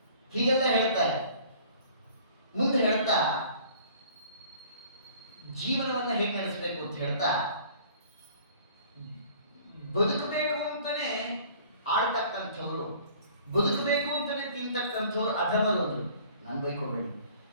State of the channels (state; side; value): inverted; both; correlation -0.51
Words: ಹೀಗೆಲ್ಲ ಹೇಳ್ತಾರೆ. ಮುಂದೆ ಹೇಳ್ತಾ ಜೀವನವನ್ನ ಹೇಗೆ ನಡೆಸಬೇಕು ಅಂತ ಹೇಳ್ತಾ, ಬದುಕಬೇಕು ಅಂತಾನೆ ಆಳ್ತಕ್ಕಂಥವ್ರು, ಬದುಕಬೇಕು ಅಂತಾನೆ ತಿಂತಕ್ಕಂಥವ್ರು ಅಧಮರು. ಅಂದ್ರು ನಾನು ಬೈಕೋಬೇಡಿ,